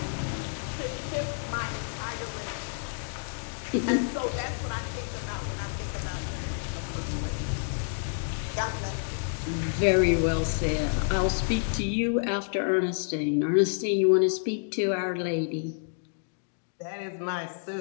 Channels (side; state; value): right; silent; digital silence